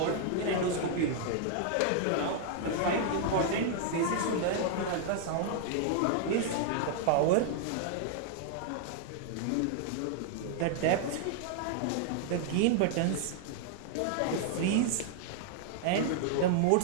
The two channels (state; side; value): different; both; correlation 0.00